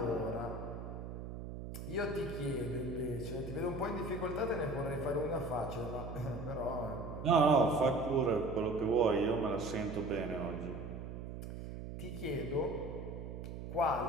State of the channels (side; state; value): right; noise; hum, 8 dB below the sound